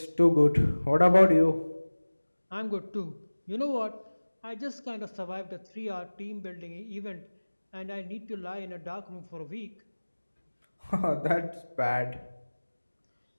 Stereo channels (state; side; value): inverted; both; correlation -1.00